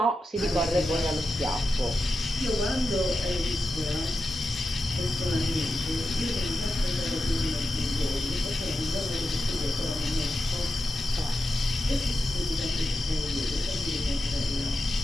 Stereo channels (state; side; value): normal; both; correlation 0.89